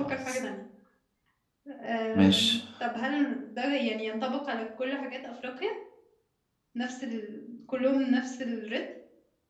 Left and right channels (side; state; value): both; identical; correlation 1.00